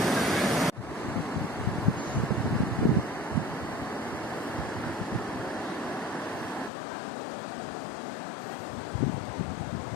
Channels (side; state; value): right; drops out; at 6.7 s